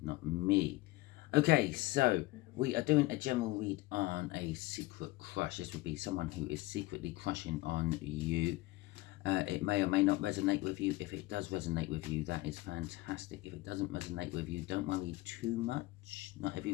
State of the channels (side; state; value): right; quieter; 19.4 dB